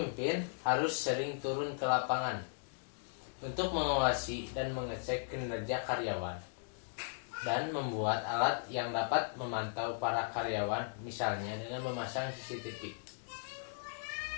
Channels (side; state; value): right; silent; digital silence